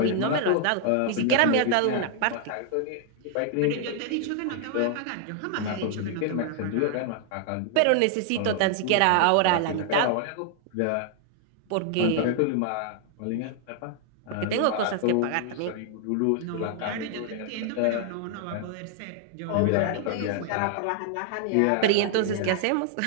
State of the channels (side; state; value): both; different; correlation 0.00